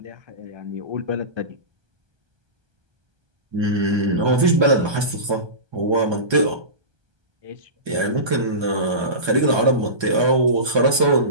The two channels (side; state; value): left; late; 1.3 ms